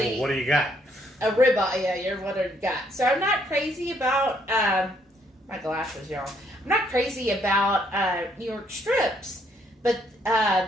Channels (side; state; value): both; normal; correlation 0.69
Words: Well, what do you got? A ribeye, yeah, you're what I got. So I'm not crazy about, my glasses, y'all. I'm not crazy about New York strips, but